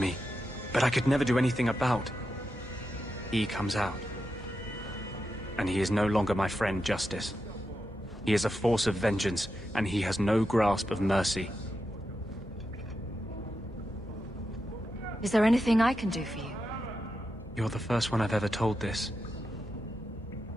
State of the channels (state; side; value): normal; both; correlation 0.88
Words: but I could never do anything about. He comes out. And he is no longer my friend, Justice. He is a force of vengeance, and he has no grasp of mercy. Is there anything I can do for you? You're the first one I've ever told this.